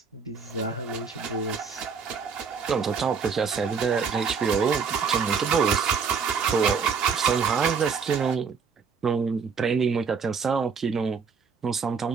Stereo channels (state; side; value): quieter; left; 5.9 dB